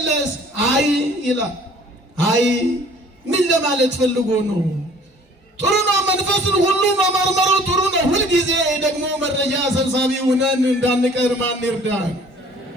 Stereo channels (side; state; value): both; normal; correlation 0.53